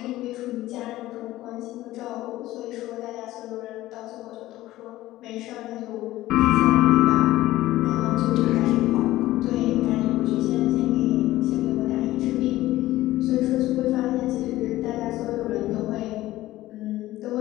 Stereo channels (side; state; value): right; quieter; 16.1 dB